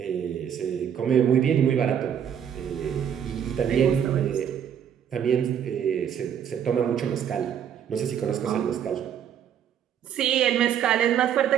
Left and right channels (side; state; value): left; quieter; 8.9 dB